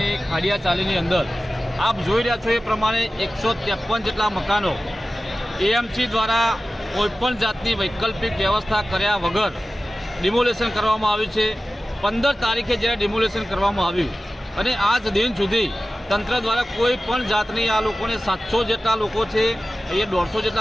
ખાડિયા ચાલીની અંદર આપ જોઈ રહ્યા છો એ પ્રમાણે 153 જેટલા મકાનો એએમસી દ્વારા કોઈપણ જાતની વૈકલ્પિક વ્યવસ્થા કર્યા વગર ડિમોલેશન કરવામાં આવ્યું છે। 15 તારીખે જ્યારે ડિમોલેશન કરવામાં આવ્યું અને આજ દિન સુધી તંત્ર દ્વારા કોઈ પણ જાતની આ લોકોને 700 જેટલા લોકો છે, અહીંયા 150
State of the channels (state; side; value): normal; both; correlation 0.95